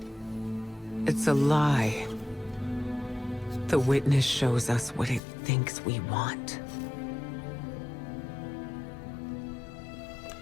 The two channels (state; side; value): drops out; right; at 5.2 s